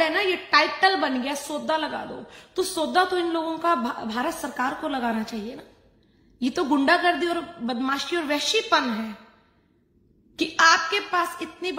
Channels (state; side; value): identical; both; correlation 1.00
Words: है ना, ये टाइटल बन गया, सौदा लगा दो। तो सौदा तो इन लोगों का भारत सरकार को लगाना चाहिए ना। ये तो गुंडागर्दी और बदमाशी और वैश्यपन है कि आपके पास इतनी